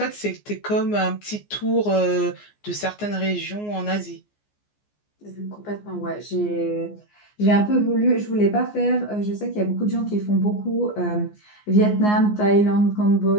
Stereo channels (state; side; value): late; right; 14 ms